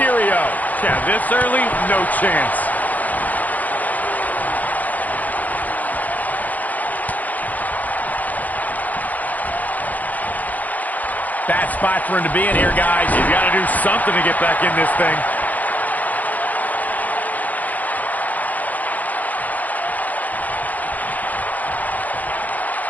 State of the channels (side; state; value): right; late; 0.080 ms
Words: Yeah, this early, no chance. Bad spot for him to be in here, guys. He's got to do something to get back in this thing.